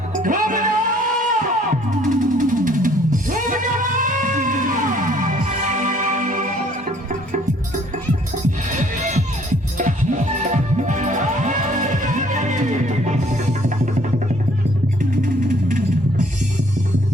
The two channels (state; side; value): normal; both; correlation 0.60